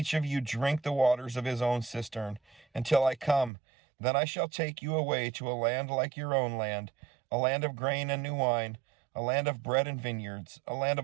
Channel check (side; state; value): left; drops out; at 3.5 s